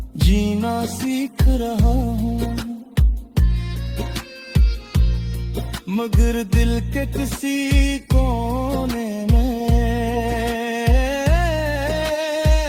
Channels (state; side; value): identical; both; correlation 1.00